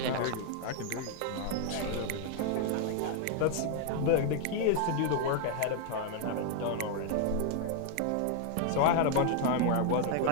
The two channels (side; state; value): both; different; correlation 0.00